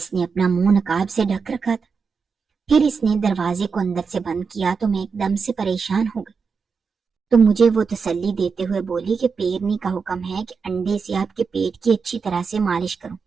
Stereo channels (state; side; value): quieter; left; 5.4 dB